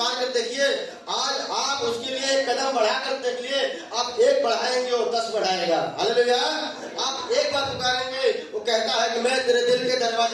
कर देखिए। आज आप उसके लिए एक कदम बढ़ा कर देख लिए, आप एक बढ़ाएंगे और 10 बढ़ाएगा। हालेलुया। आप एक बार पुकारेंगे, वो कहता है कि मैं तेरे दिल के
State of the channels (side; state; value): both; identical; correlation 1.00